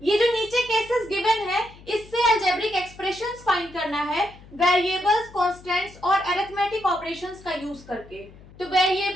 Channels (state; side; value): noise; left; hum, 21 dB below the sound